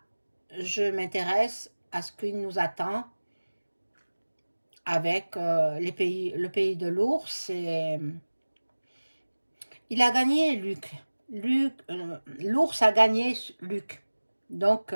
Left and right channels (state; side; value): inverted; both; correlation -1.00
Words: je m'intéresse à ce qui nous attend avec le pays de l'ours. Il a gagné Luc. L'ours a gagné Luc. Donc,